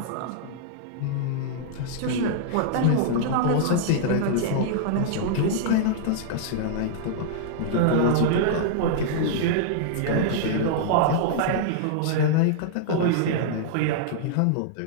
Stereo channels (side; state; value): both; different; correlation -0.01